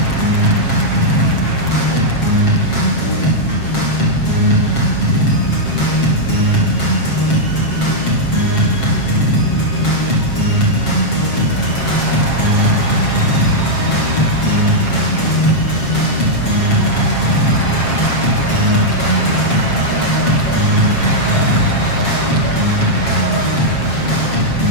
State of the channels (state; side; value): late; right; 7.4 ms